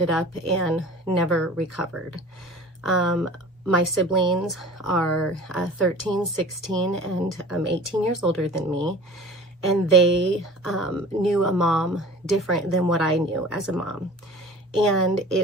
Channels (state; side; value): normal; both; correlation 0.42